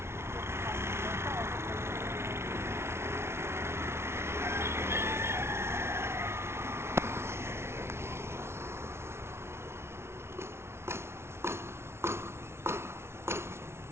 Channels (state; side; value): late; left; 0.12 ms